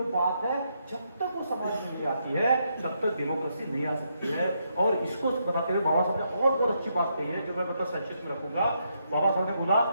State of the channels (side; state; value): both; inverted; correlation -0.78